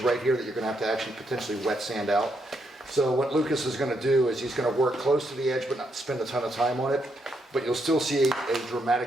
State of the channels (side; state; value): both; normal; correlation 0.78